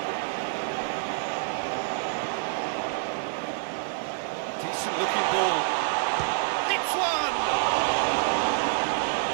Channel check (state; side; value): silent; left; digital silence